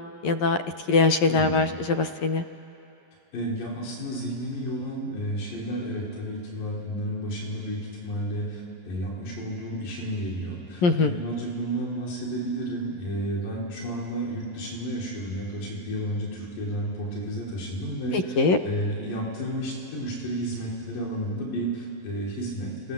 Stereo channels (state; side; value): late; right; 11 ms